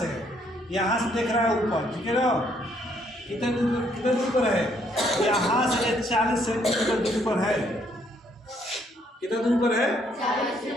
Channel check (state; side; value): normal; both; correlation 0.69